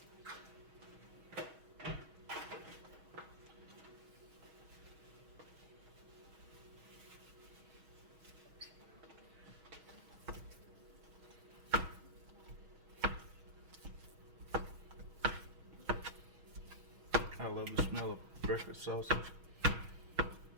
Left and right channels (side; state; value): left; late; 6.3 ms